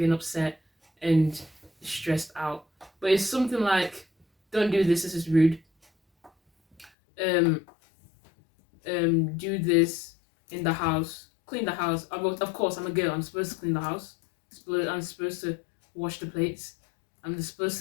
and upset and stressed out. But it's something like, don't do this is rude. Do this in the house, clean the house. Of course, I'm a girl. I'm supposed to clean the house. I'm supposed to wash the plates. I'm supposed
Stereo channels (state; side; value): drops out; right; at 6.9 s